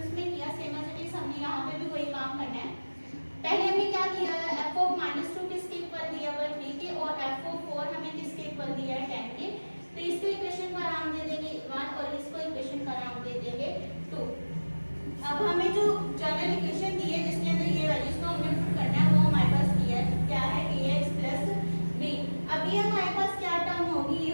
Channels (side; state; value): both; inverted; correlation -1.00